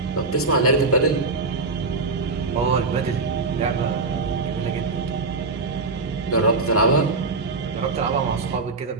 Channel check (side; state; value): left; quieter; 3.8 dB